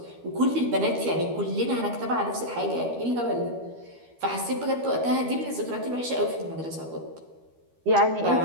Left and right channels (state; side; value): late; left; 12 ms